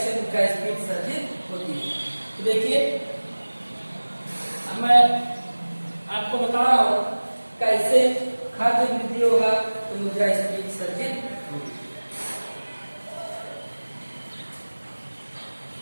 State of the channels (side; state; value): both; inverted; correlation -1.00